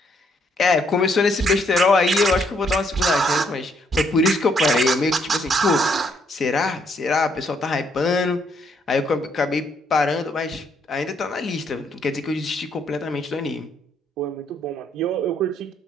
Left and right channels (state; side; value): normal; both; correlation 0.71